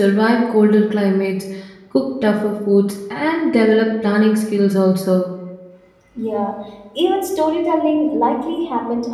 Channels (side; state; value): both; identical; correlation 1.00